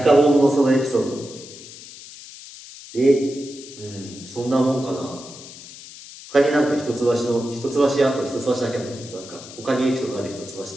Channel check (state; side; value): noise; left; hiss, 16 dB below the sound